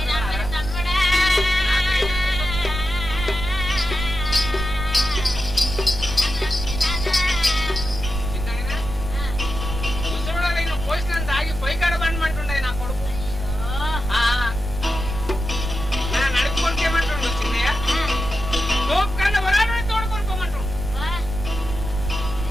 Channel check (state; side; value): noise; right; rumble, 6 dB below the sound